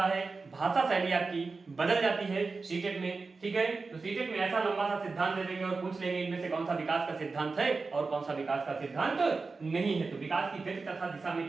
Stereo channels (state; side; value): quieter; left; 4.1 dB